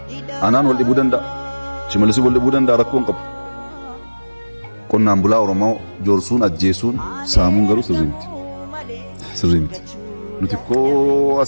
anaan wal dhibuu danda'a. Shimalisi wal dhibuu danda'a rakkoo hin qabu. Qonnaan bulaa Oromoo joorsuun ajjeesuun saamuun garuu sirrii miti. Nuti koo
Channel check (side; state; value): both; inverted; correlation -1.00